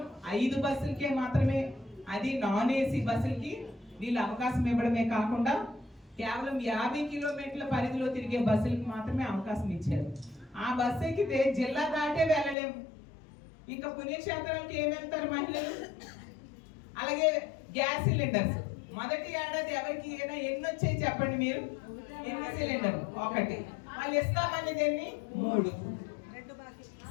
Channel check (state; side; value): drops out; right; at 12.6 s